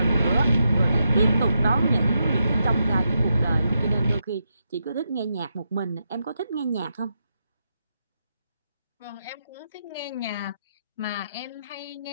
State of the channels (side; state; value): both; inverted; correlation -0.84